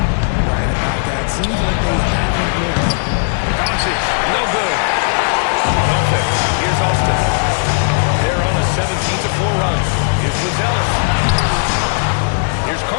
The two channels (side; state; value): right; silent; 62 dB below the other